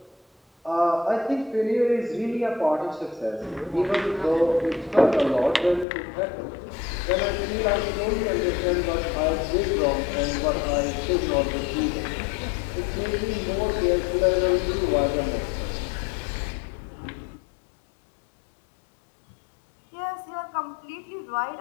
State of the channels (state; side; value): drops out; right; at 5.9 s